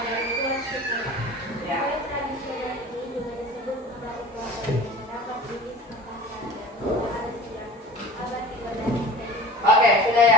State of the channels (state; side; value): normal; both; correlation 0.40